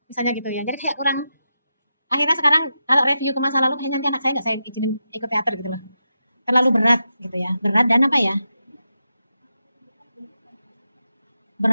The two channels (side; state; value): both; inverted; correlation -0.88